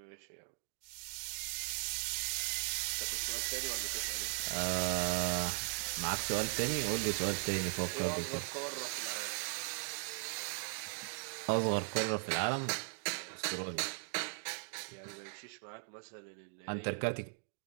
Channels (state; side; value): silent; left; 52 dB below the other